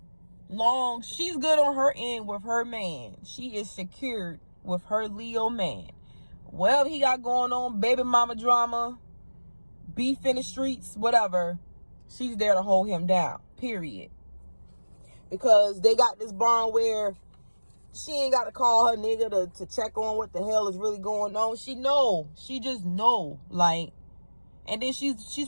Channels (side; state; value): both; inverted; correlation -1.00